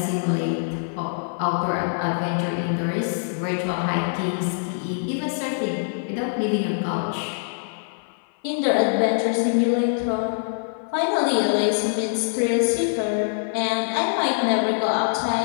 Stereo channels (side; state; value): right; silent; 55 dB below the other